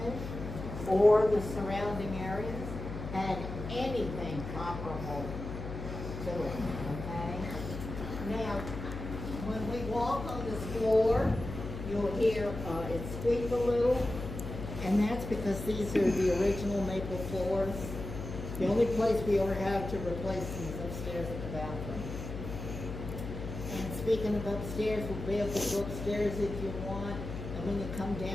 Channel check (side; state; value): left; noise; hum, 8 dB below the sound